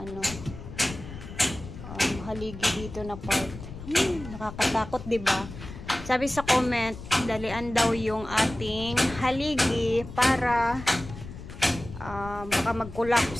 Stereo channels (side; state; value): left; noise; rumble, 12 dB below the sound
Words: haligi dito na part. Nakakatakot, diba? Sabi sa comment, dalian daw yung ating haligi para baka